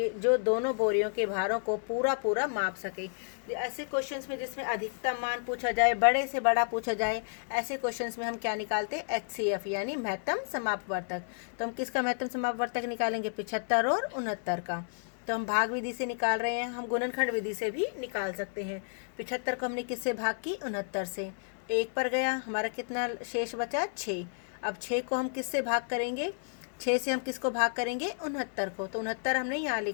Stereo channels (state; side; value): silent; right; digital silence